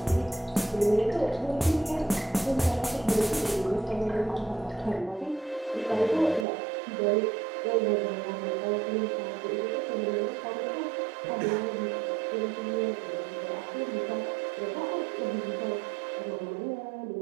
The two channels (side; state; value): left; drops out; at 6.5 s